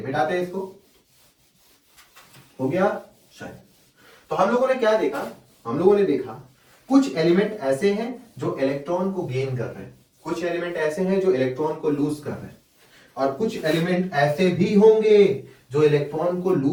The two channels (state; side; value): identical; both; correlation 1.00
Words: मिटाते हैं इसको, हो गया शायद। तो हम लोगों ने क्या देखा, हम लोगों ने देखा कुछ एलिमेंट ऐसे हैं जो इलेक्ट्रॉन को गेन कर रहे हैं, कुछ एलिमेंट ऐसे हैं जो इलेक्ट्रॉन को लूज कर रहे हैं, और कुछ एलिमेंट ऐसे भी होंगे जो इलेक्ट्रॉन को